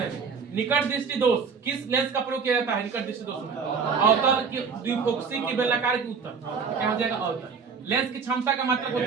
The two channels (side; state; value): left; quieter; 5.7 dB